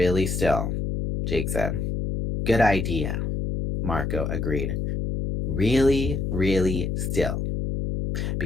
still, Jake said. Good idea, Marco agreed. Really, really still.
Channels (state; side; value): noise; left; hum, 1 dB below the sound